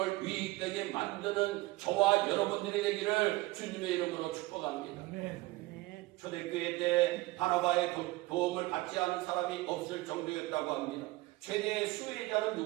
유익되게 만드는 저와 여러분들이 되기를 주님의 이름으로 축복합니다. 초대교회 때 바나바의 도움을 받지 않은 사람이 없을 정도였다고 합니다. 최대의 수혜자는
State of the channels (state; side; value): quieter; left; 20.5 dB